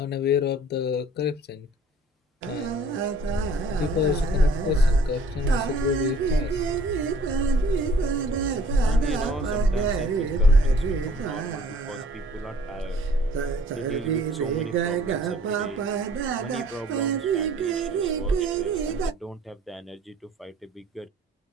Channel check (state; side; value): normal; both; correlation 0.54